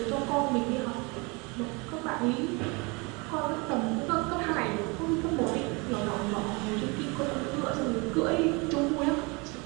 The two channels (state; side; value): quieter; left; 28.5 dB